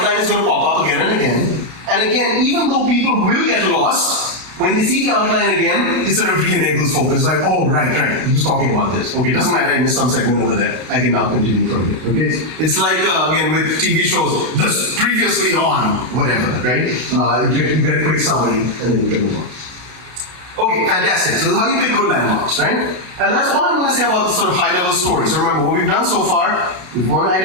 is going to pop up again and again. And again, even though people will get lost, when they see the outline again, it sort of re-enables focus. Like, oh, right, he was talking about this. Okay, it doesn't matter, I missed some segment over there. I can now continue from here. Okay, it's like, again, with TV shows, this previously on, whatever, right? You get a quick summary, and then you can move on. Okay, fantastic. So this is how you pick good landmarks, right? And that's all I'm going to say about the sort of high-level story. So remember, what we've done so far, you want to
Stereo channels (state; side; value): late; left; 32 ms